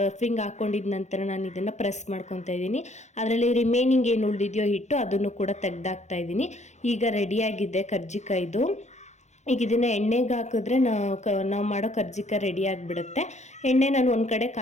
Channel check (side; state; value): right; late; 0.33 ms